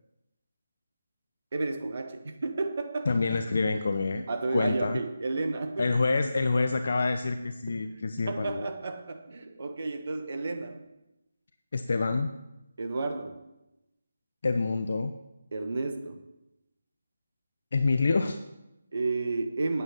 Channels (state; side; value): inverted; both; correlation -0.91